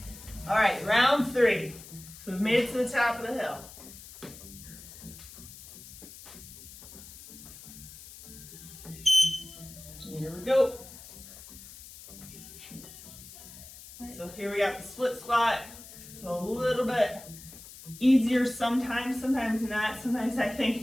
all right, round 3. So we've made it to the top of the hill. Here we go. So here we got the split squat. So a little bit easier sometimes, sometimes not. Sometimes I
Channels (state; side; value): noise; left; hiss, 16 dB below the sound